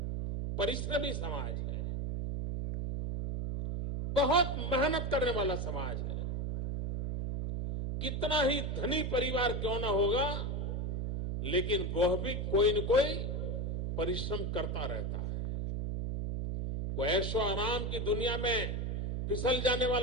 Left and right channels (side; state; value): right; noise; hum, 1 dB below the sound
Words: परिश्रमी समाज है, बहुत मेहनत करने वाला समाज है। कितना ही धनी परिवार क्यों ना होगा, लेकिन वह भी कोई न कोई परिश्रम करता रहता है। वो ऐशो आराम की दुनिया में फिसल जाने